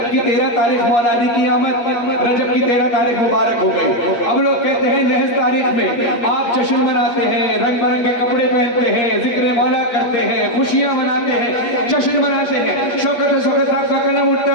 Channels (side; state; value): right; late; 8.5 ms